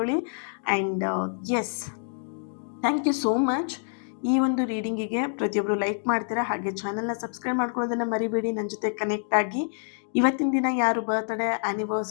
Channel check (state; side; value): silent; right; digital silence